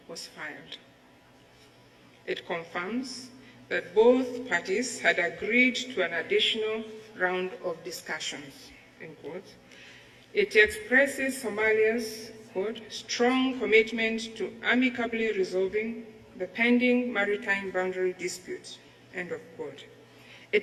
was filed. It confirms that both parties had agreed to an additional round of discussions, end quote. It expresses Somalia's, quote, strong commitment to amicably resolving the pending maritime boundary dispute, end of quote.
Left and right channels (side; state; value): both; identical; correlation 1.00